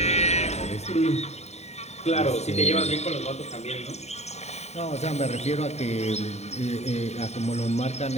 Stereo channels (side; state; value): right; late; 0.32 ms